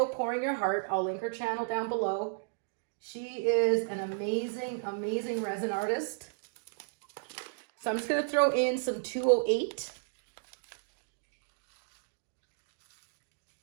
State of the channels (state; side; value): silent; left; digital silence